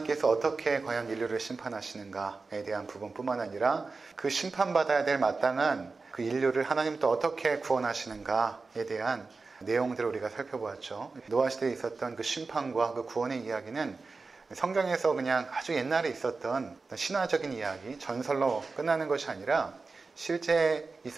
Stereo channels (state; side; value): quieter; left; 4.1 dB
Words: 어떻게 과연 인류를 심판하시는가에 대한 부분뿐만 아니라 그 심판받아야 될 마땅한 그 인류를 하나님 또 어떻게 구원하시는가에 대한 내용들을 우리가 살펴보았죠. 노아 시대에 있었던 그 심판과 그 구원의 이야기는 성경에서 그냥 아주 옛날에 있었던 신화적인 이야기, 전설로 끝나는 것이 아니라 실제